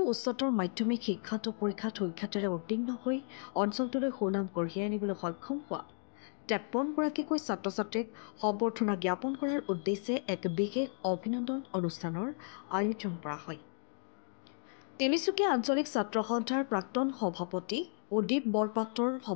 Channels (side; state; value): right; silent; 55 dB below the other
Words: উচ্চতৰ মাধ্যমিক শিক্ষান্ত পৰীক্ষাত সুখ্যাতিৰে উত্তীৰ্ণ হৈ অঞ্চলটোলৈ সুনাম কঢ়িয়াই আনিবলৈ সক্ষম হোৱা ৫৩গৰাকীকৈ ছাত্ৰ ছাত্ৰীক সম্বৰ্ধনা জ্ঞাপন কৰাৰ উদ্দেশ্যে এক বিশেষ অভিনন্দন অনুষ্ঠানৰ আয়োজন কৰা হয়। তিনিচুকীয়া আঞ্চলিক ছাত্ৰ সন্থাৰ প্ৰাক্তন সভাপতি উদীপ বৰপাত্ৰৰ